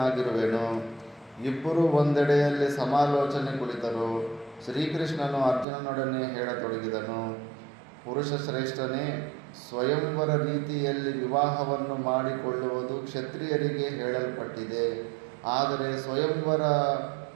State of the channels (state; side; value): drops out; left; at 5.7 s